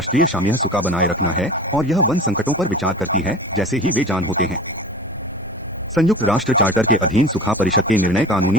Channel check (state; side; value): normal; both; correlation 0.37